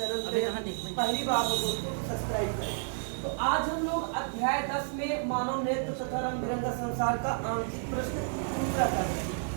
पे पहली बार हो दोस्तों तो सब्सक्राइब करें। तो आज हम लोग अध्याय 10 में मानव नेत्र तथा रंग बिरंगा संसार का आंकिक प्रश्न दूसरा कर रहे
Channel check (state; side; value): silent; left; 57 dB below the other